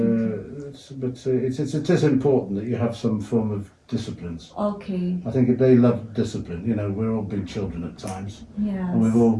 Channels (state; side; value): identical; both; correlation 1.00